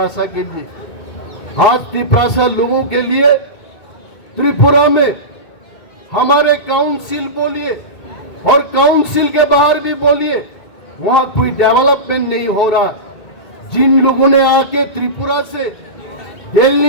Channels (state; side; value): late; right; 2.2 ms